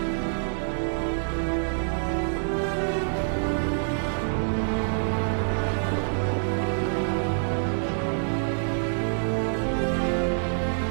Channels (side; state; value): left; silent; digital silence